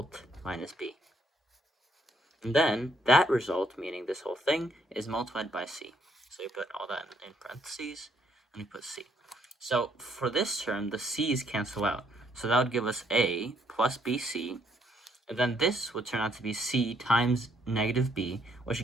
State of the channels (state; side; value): normal; both; correlation 0.69